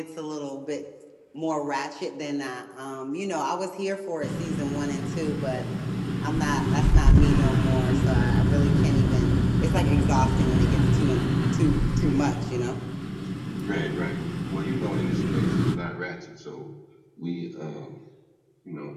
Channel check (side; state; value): both; identical; correlation 1.00